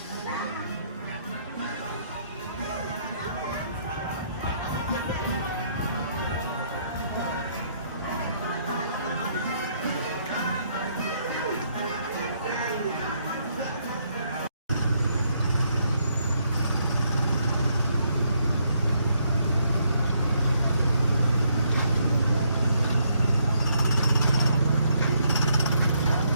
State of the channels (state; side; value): inverted; both; correlation -0.73